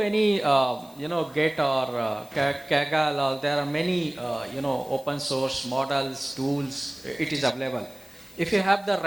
Git or Kaggle, or there are many, open source models, tools, it is available. If you have the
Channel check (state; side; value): noise; left; hiss, 25 dB below the sound